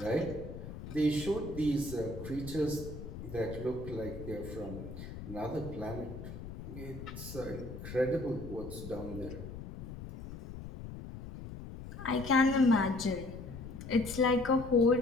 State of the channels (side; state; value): left; noise; rumble, 10 dB below the sound